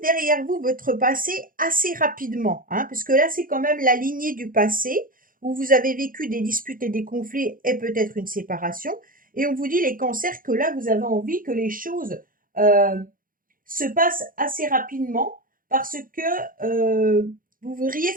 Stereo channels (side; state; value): left; late; 0.40 ms